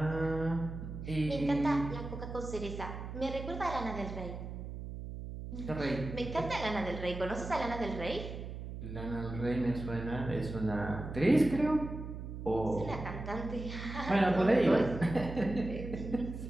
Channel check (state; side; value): noise; right; hum, 8 dB below the sound